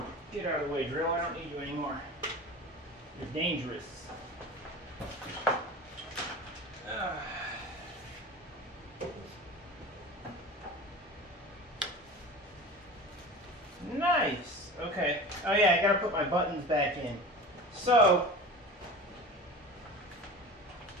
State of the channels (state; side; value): normal; both; correlation 0.35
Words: Get out of the way, drill. I don't need you anymore. You're dangerous. Nice. Okay. Oh yeah, I gotta put my buttons back in. So,